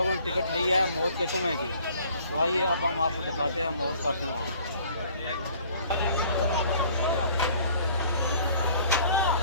ने टिकट ली है मौत के कुएँ की, तो आइए अब हम आपको दिखाते हैं मौत का कुआँ।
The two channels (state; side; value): inverted; both; correlation -0.54